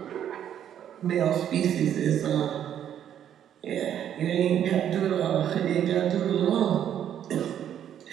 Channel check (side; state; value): left; quieter; 9.9 dB